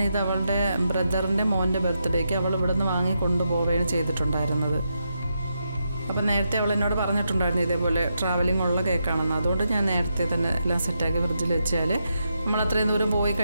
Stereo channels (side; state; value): both; inverted; correlation -0.84